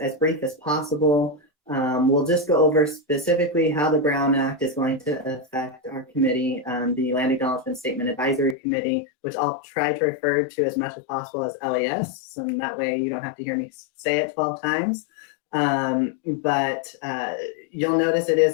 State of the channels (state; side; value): drops out; right; at 8.6 s